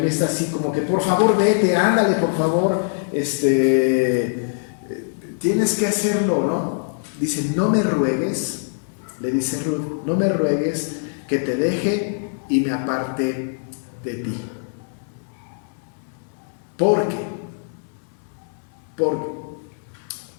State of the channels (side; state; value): right; silent; digital silence